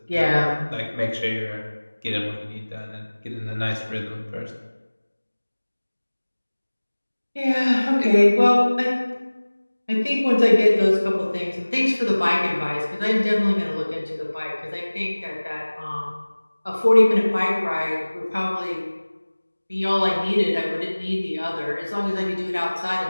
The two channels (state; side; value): inverted; both; correlation -1.00